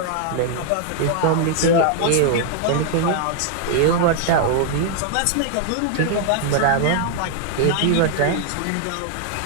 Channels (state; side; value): different; both; correlation 0.00